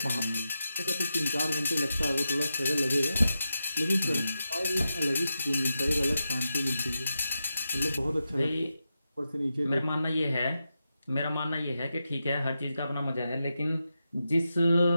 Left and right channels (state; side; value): inverted; both; correlation -0.89